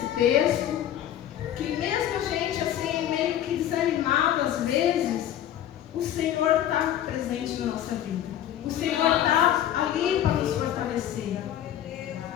texto? Que mesmo a gente assim, meio que desanimado às vezes, o Senhor está presente na nossa vida. O Senhor está ali para nos fortalecer.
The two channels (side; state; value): right; quieter; 11.3 dB